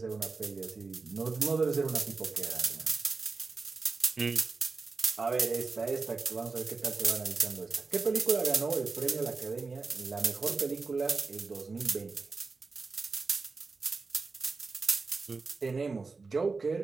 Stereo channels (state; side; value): quieter; left; 4.2 dB